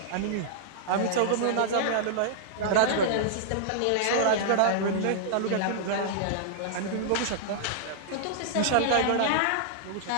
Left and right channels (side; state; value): both; different; correlation -0.01